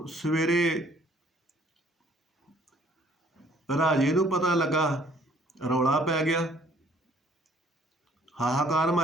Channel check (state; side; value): normal; both; correlation 0.60